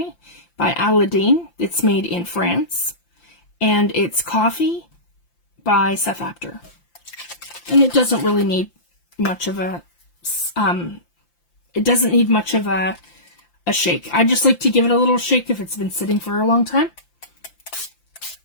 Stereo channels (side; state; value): right; late; 5.8 ms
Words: by Aladdin. It's made in France. And it's Coffee by Seth Apter. And it doesn't really need much of a shake. I just like to give it a little shake if it's been sitting for a long time.